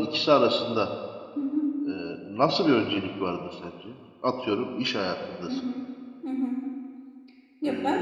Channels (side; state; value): both; identical; correlation 1.00